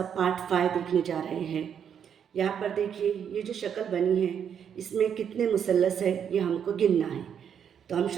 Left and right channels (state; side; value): quieter; left; 8.2 dB